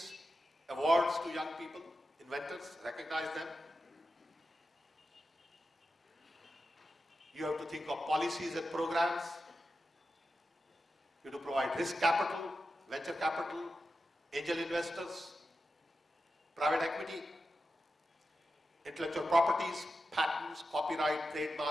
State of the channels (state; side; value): normal; both; correlation 0.90